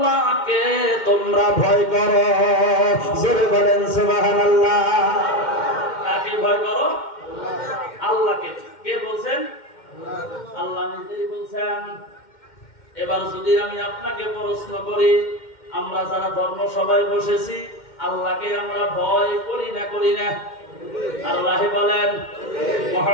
তোমরা ভয় করো। জোরে বলেন সুবহানাল্লাহ। কাকে ভয় করো? আল্লাহকে। কে বলছেন? আল্লাহ নিজেই বলছেন। এবার যদি আমি আপনাকে প্রশ্ন করি, আমরা যারা ধর্ম সভায় বসেছি, আল্লাহকে আমরা ভয় করি না করি না? আল্লাহ বলেন,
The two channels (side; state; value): right; late; 2.1 ms